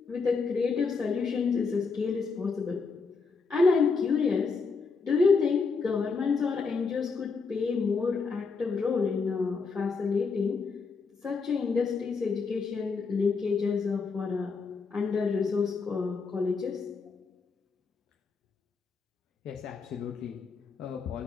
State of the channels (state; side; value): quieter; right; 4.8 dB